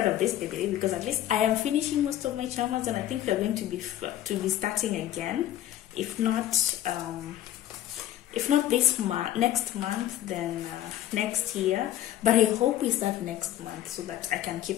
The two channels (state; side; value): quieter; right; 12.7 dB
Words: of this baby because at least I am finishing most of my chamas, and I think we're going to be starting again. If not this month, next month, then next year. But I hope we start next month so that I can